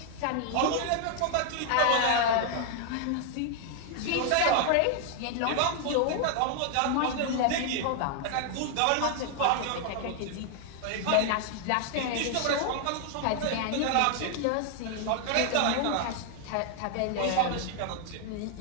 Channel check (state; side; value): different; both; correlation 0.00